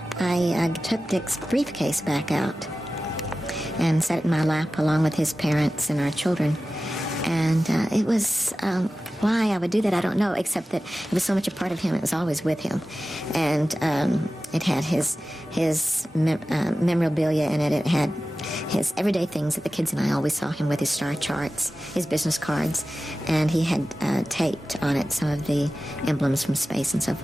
I took Dick's briefcase back out and set it in my lap along with his parents and our children. And it was, why I would do that, I don't know, except that it was so much a part of him, it was always with him. And it had his memorabilia in it. It had his everyday things that the kids and I always saw him with, his star charts, his business cards, and he had taped on it some of the emblems from space and so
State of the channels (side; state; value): both; normal; correlation 0.95